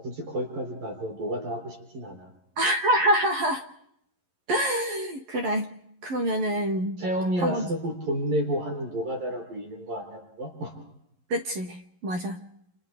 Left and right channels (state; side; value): late; left; 11 ms